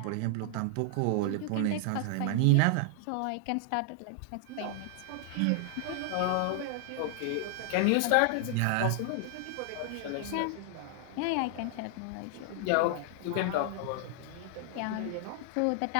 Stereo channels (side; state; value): both; different; correlation 0.00